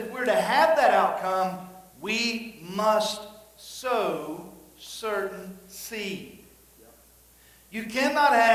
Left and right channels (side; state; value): both; identical; correlation 1.00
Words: we're to have that outcome, we must sow certain seed. You cannot